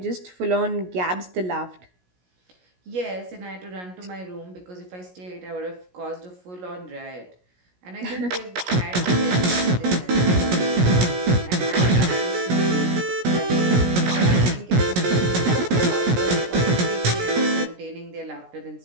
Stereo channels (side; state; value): left; late; 16 ms